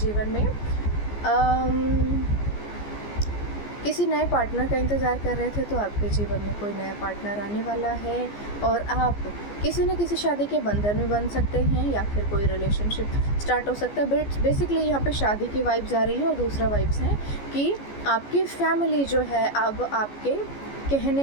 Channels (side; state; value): right; late; 14 ms